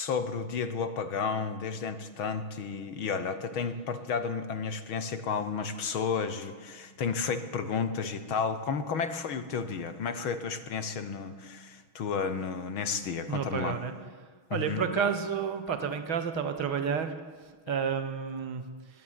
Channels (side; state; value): right; late; 6.3 ms